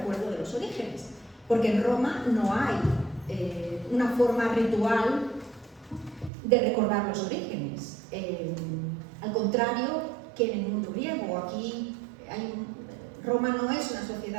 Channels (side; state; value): left; drops out; at 6.3 s